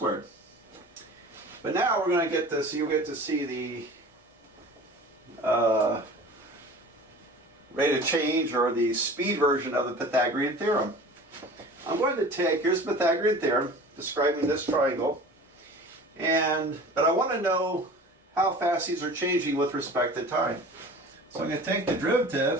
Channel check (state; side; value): normal; both; correlation 0.41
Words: But now we're going to get this, you'll get to see the rate of change, or the speed version of the Pythagorean theorem. I'm going to take, here's the Pythagorean theorem describing this triangle, but I want to know how fast these are changing with respect to time. So I'm going to take the